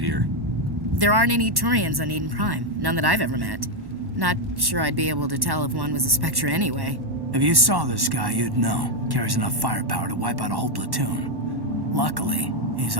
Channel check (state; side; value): late; left; 1.1 ms